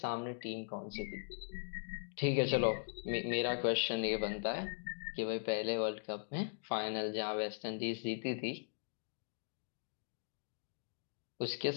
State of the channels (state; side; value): silent; right; digital silence